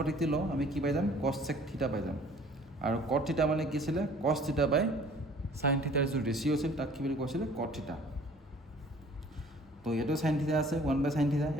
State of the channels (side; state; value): both; normal; correlation 0.52